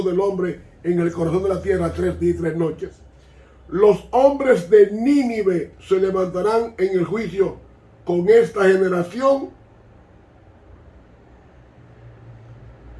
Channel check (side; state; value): both; identical; correlation 1.00